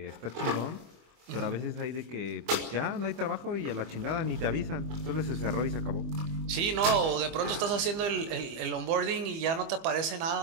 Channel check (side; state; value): left; late; 25 ms